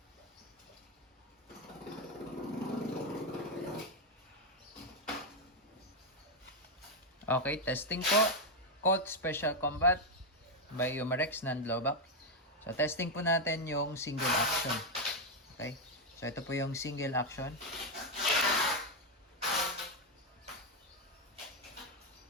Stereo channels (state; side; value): normal; both; correlation 0.04